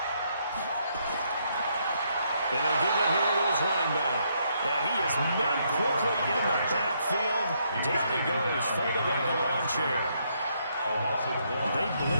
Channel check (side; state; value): both; inverted; correlation -0.74